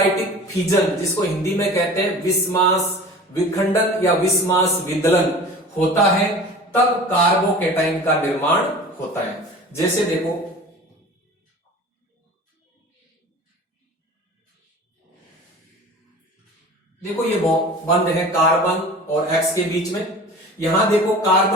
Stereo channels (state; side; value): normal; both; correlation 0.39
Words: फिजन, जिसको हिंदी में कहते हैं विस्मास विखंडन या विस्मास विदलन होता है, तब कार्बोकेटाइन का निर्माण होता है। जैसे देखो ये बंध है कार्बन और एक्स के बीच में। यहां देखो,